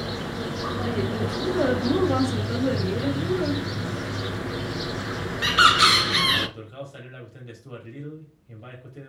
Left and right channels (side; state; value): both; identical; correlation 1.00